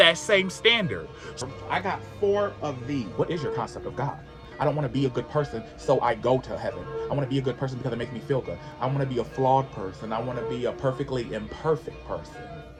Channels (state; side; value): identical; both; correlation 1.00